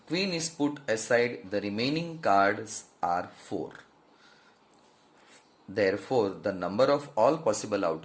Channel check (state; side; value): identical; both; correlation 1.00